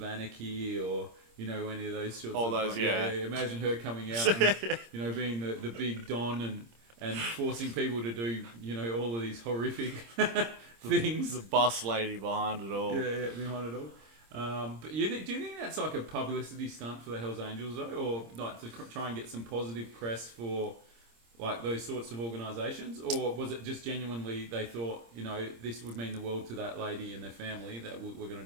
Anarchy or any of those sorts all of those, yeah. Imagine her coming out and being the big don and forcing people to do all of these horrific things. The boss lady behind it all. Yeah, behind it all. But do you think that's like a publicity stunt for the Hells Angels though, or like to try and get some positive press for like those sorts of organisations, or was it just genuinely they thought, this would mean the world to that lady and their family that we're going to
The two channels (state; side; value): late; left; 26 ms